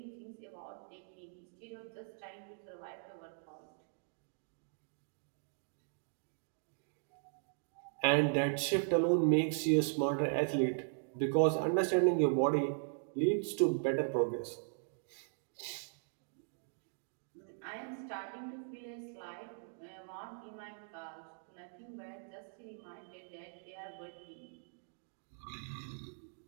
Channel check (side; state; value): left; silent; digital silence